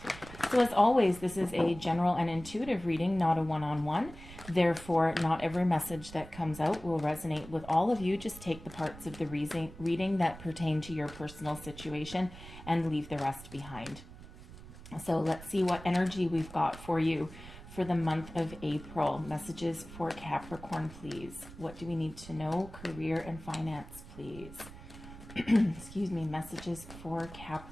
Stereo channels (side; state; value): right; noise; rumble, 16 dB below the sound